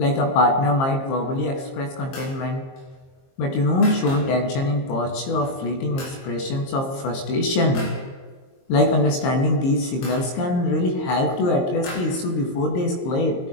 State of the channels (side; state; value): right; late; 22 ms